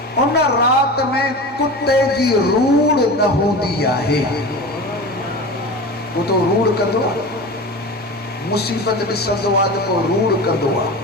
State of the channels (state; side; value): normal; both; correlation 0.31